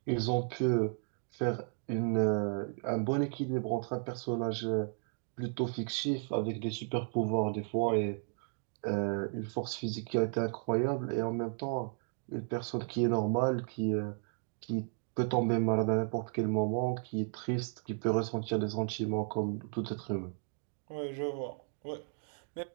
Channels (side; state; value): left; silent; 55 dB below the other